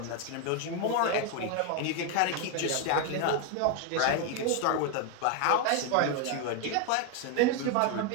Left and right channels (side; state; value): both; different; correlation 0.01